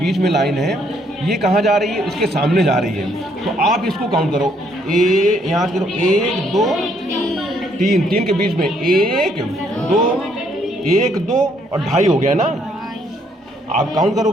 में लाइन है, ये कहाँ जा रही है, इसके सामने जा रही है। तो आप इसको काउंट करो, यहाँ से करो 1 2 3 के बीच में 1 2 1 2 और 2.5 हो गया ना। आप काउंट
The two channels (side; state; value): both; normal; correlation 0.69